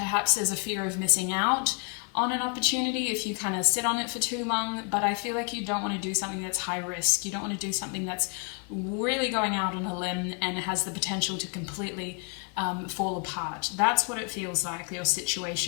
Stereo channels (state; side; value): quieter; right; 37.7 dB